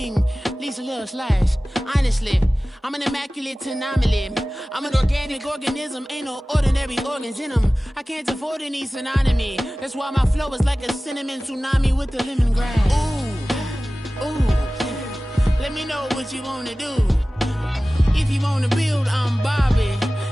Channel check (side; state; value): both; normal; correlation 0.97